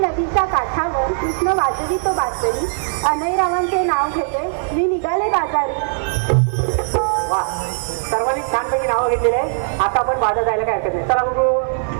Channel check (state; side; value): silent; left; 55 dB below the other